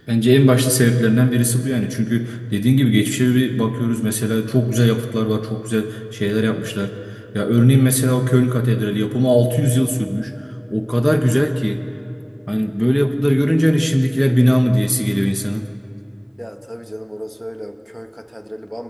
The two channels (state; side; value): identical; both; correlation 1.00